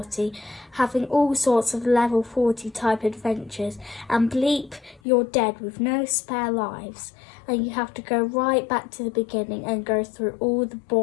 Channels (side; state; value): right; drops out; at 5.0 s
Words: having all sorts of level 40 type adventures, and bleep, you're dead with no spare lives. And you have to go right back to the beginning and go through all the